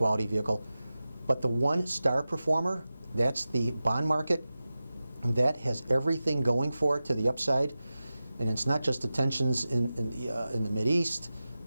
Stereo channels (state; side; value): inverted; both; correlation -0.95